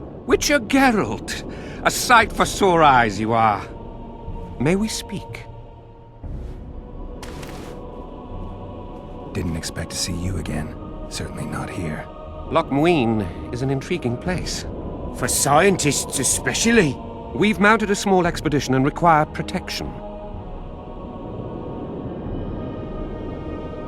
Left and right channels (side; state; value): both; identical; correlation 1.00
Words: Witcher Geralt. A sight for sore eyes you are. May we speak? Didn't expect to see you again. Certainly not here. Loch Muin is an intriguing place. For scientists especially. We've mounted a small expedition and require protection.